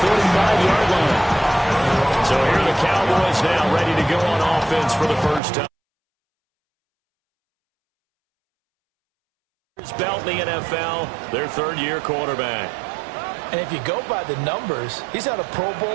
45-yard line. So here are the Cowboys now ready to go on offense for the first time. Belt in the NFL, their third-year quarterback. And if you go by the numbers, he's had a Pro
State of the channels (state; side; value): drops out; left; at 5.4 s